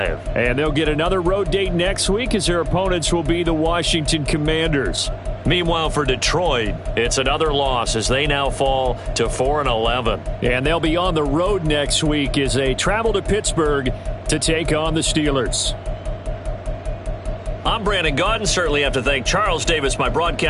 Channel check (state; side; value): identical; both; correlation 1.00